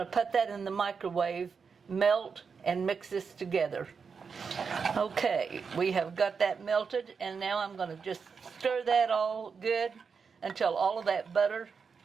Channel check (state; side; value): quieter; left; 5.7 dB